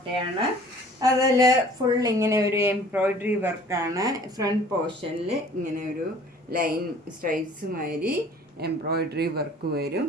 അതിൽ ഫുൾ ഇങ്ങനെ ഒരു എംബ്രോയിഡറി വർക്കാണ്. ഫ്രണ്ട് പോർഷനിൽ ഇങ്ങനെ ഒരു ലൈൻ സ്ട്രൈപ്സ് മാതിരി എംബ്രോയിഡറി വർക്ക് വരും.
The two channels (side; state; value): both; normal; correlation 0.51